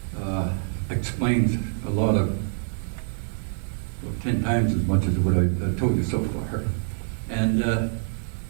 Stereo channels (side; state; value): left; silent; 61 dB below the other